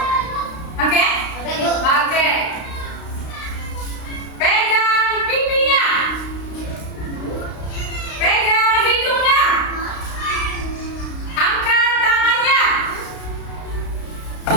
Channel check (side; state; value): right; late; 32 ms